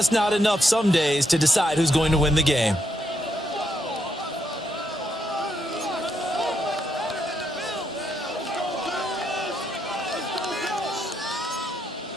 not enough some days to decide who's going to win the game.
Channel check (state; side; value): normal; both; correlation 0.78